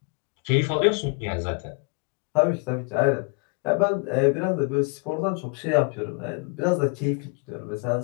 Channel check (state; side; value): quieter; right; 34.2 dB